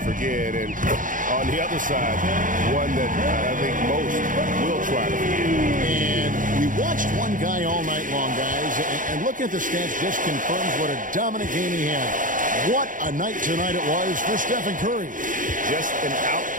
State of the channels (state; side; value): late; left; 0.38 ms